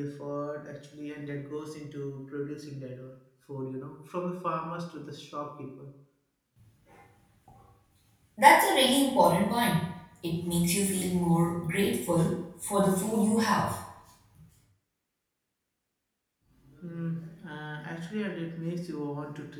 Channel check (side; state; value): both; identical; correlation 1.00